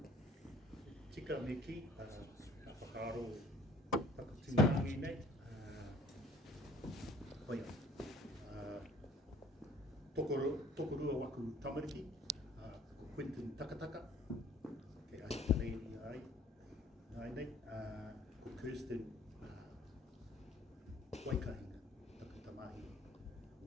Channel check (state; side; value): normal; both; correlation 0.54